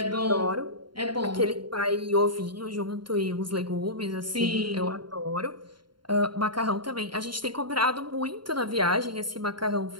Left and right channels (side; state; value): left; late; 0.72 ms